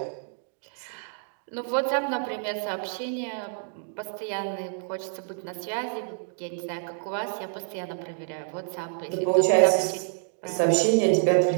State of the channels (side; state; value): left; silent; digital silence